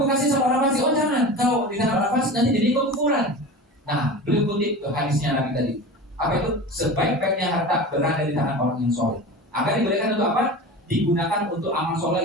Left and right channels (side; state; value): both; normal; correlation 0.32